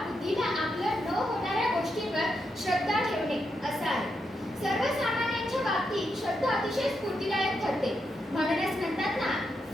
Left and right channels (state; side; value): normal; both; correlation 0.83